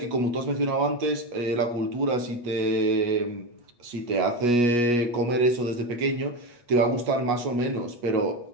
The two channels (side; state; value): left; late; 8.3 ms